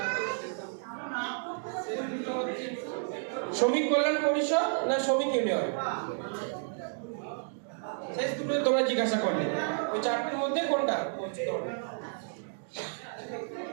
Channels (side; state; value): left; silent; digital silence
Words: শ্রমিক কল্যাণ পরিষদ না শ্রমিক ইউনিয়ন? শেষ দুটো তোমরা জিজ্ঞাসা করলে, ওই চারটির মধ্যে কোনটা?